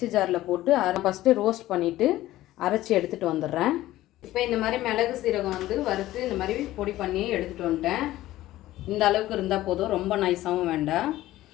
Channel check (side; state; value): right; quieter; 15.5 dB